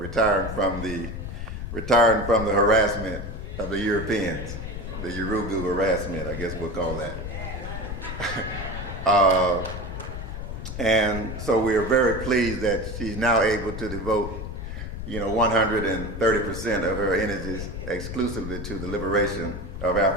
retiring from the harassment of the Europeans, the Urugu harassment, I guess we'll call that. And so we are very pleased that she's now able to devote 130% of her energies exclusively to the liberation of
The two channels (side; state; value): left; noise; rumble, 7 dB below the sound